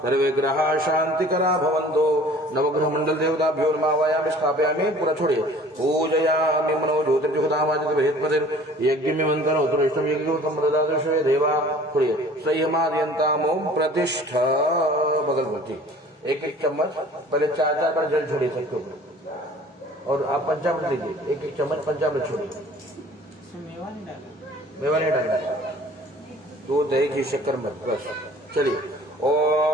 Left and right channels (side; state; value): both; normal; correlation 0.49